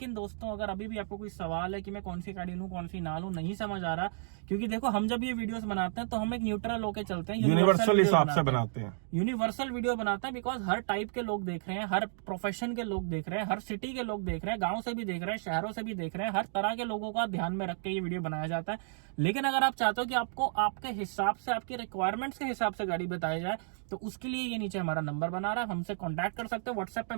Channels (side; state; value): left; silent; digital silence